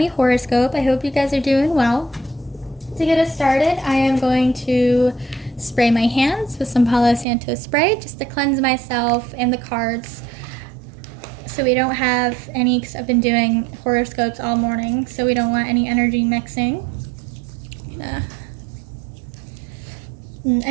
horoscope. I hope you guys are doing well. To get us started, I am going to spray my hands with some Palo Santo spray just to cleanse myself and the cards so we don't have any, because I've been doing horoscopes all morning, so we don't want any energy mixing.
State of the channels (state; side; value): drops out; left; at 7.2 s